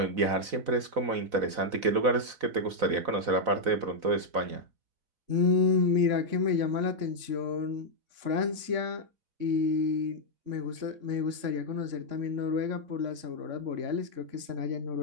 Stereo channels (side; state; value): left; late; 4.0 ms